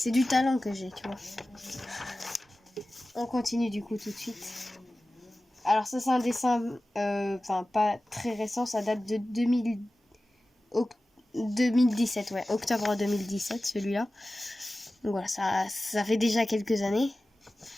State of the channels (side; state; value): both; normal; correlation 0.96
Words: du talent que j'ai, tu vois. On continue du coup tout de suite. Alors ça, c'est un dessin, pas très récent, ça date de 2017, ouais, octobre 2017, celui-là. Donc voilà, ça fait déjà quelques années.